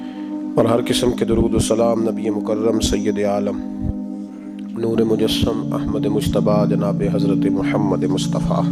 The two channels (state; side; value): identical; both; correlation 1.00